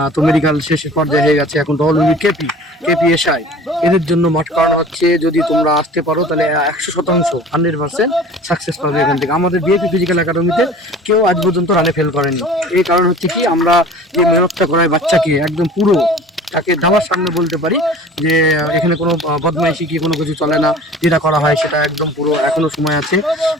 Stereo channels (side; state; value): both; normal; correlation 0.44